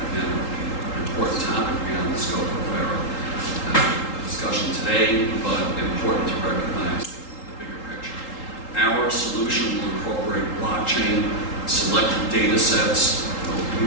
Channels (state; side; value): late; right; 3.8 ms